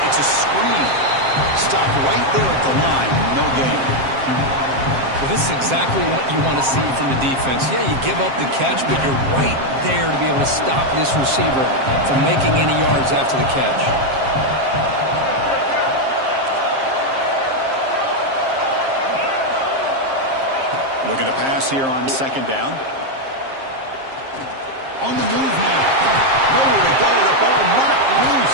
It's a screen. Stop right there at the line. No gain. Well, this is exactly what you want to see from the defense. Yeah, you give up the catch, but you're right there to be able to stop this receiver from making any yards after the catch. Looking to pass here on second down. On the move now. Nowhere to go. The ball knocked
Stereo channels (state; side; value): late; left; 7.5 ms